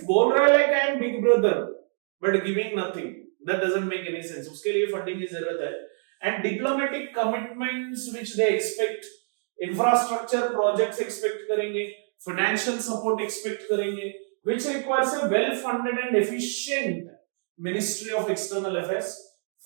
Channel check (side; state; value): left; silent; 61 dB below the other